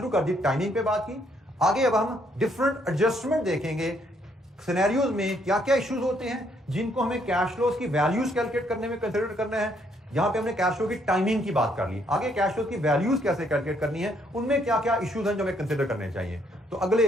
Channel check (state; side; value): normal; both; correlation 0.70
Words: कर दी, टाइमिंग पे बात की, आगे अब हम डिफरेंट एडजस्टमेंट देखेंगे, सिनेरियोज में क्या क्या इश्यूज होते हैं जिनको हमें कैश फ्लोज की वैल्यूज कैलकुलेट करने में कंसीडर करना है। यहां पे हमने कैश फ्लो की टाइमिंग की बात कर ली, आगे कैश फ्लो की वैल्यूज कैसे कैलकुलेट करनी है, उनमें क्या क्या इश्यूज हैं जो हमें कंसीडर करने चाहिए। तो